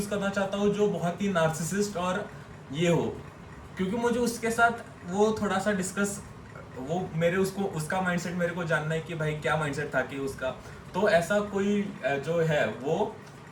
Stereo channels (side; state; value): both; identical; correlation 1.00